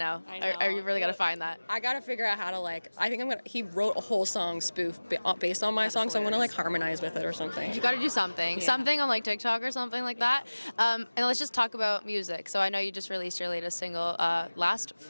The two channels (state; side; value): inverted; both; correlation -1.00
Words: I really got to find that. I got to figure out how to like. I think he wrote a whole song spoof based on my song, so I'm gonna like harmonize with it or something. You got to do something, something on like TikTok or something like that. And let's just talk about music. So I know you just released your latest single last